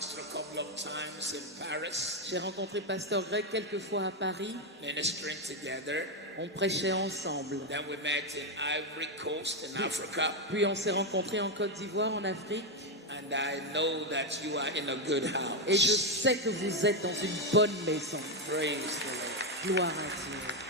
a couple of times in Paris, J'ai rencontré Pasteur Greg quelques fois à Paris. ministering together. On prêchait ensemble. Then we met in Ivory Coast in Africa. Puis on s'est rencontrés en Côte d'Ivoire, en Afrique. And I know that you are in a good Et je house. sais que vous êtes dans une bonne maison. Praise the Lord. Gloire à Dieu.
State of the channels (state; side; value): normal; both; correlation 0.05